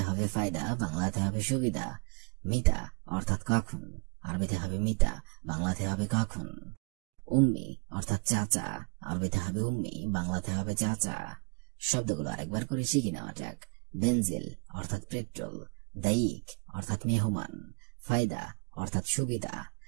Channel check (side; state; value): left; quieter; 30.0 dB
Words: হবে ফায়দা, বাংলাতে হবে সুবিধা। মিতা অর্থাৎ কখন, আরবিতে হবে মিতা, বাংলাতে হবে কখন। উম্মি অর্থাৎ চাচা, আরবিতে হবে উম্মি, বাংলাতে হবে চাচা। শব্দগুলো আরেকবার করে শিখে নেওয়া যাক। বেনজিল অর্থাৎ পেট্রোল, দায়িক অর্থাৎ মেহমান, ফায়দা অর্থাৎ সুবিধা,